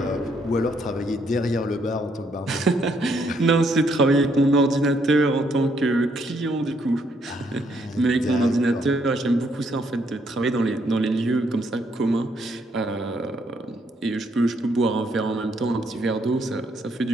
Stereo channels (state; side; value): normal; both; correlation 0.72